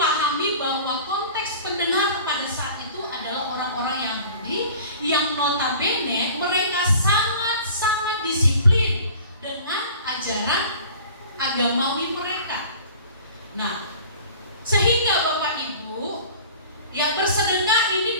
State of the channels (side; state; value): both; inverted; correlation -0.44